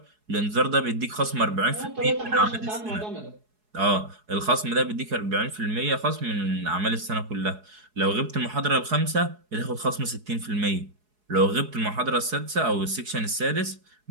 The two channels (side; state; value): left; late; 4.7 ms